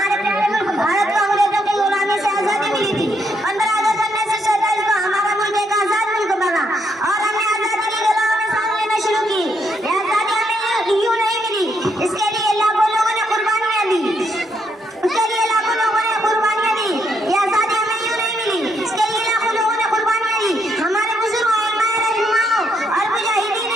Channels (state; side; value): normal; both; correlation 0.76